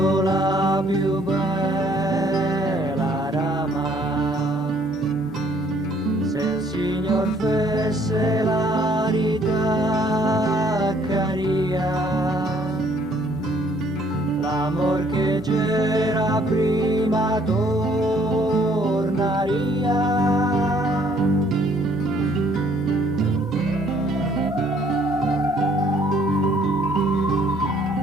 la più bella rama, se il Signor fesse la ritaccaria, l'amor che c'era prima tornaria.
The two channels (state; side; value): normal; both; correlation 0.62